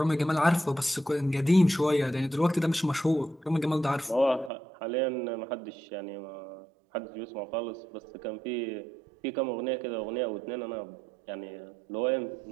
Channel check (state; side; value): drops out; left; at 4.5 s